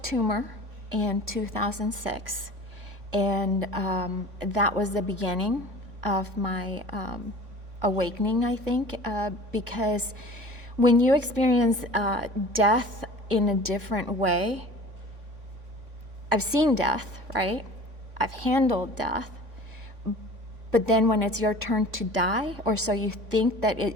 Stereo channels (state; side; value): late; left; 3.5 ms